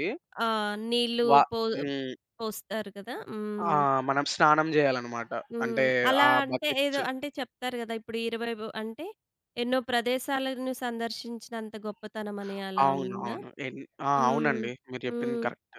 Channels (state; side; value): identical; both; correlation 1.00